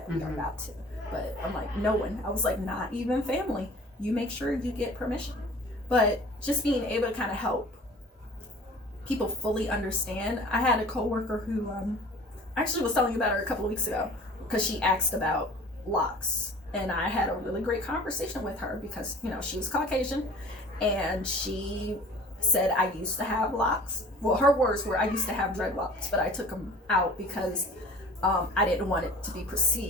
we are about to. But I'm like, no one. I was like, not even family. You make sure you get permission. But just being able to kind of help people fully understand. I had a coworker who I actually was telling you about her a couple of weeks ago, because she asked about locks. And I had a really great conversation with her, because, you know, she was Caucasian, and she said, I used to have locks. Well, her words were, I used to have dreadlocks, but I took them out because I didn't want it to be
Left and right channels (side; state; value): both; normal; correlation 0.45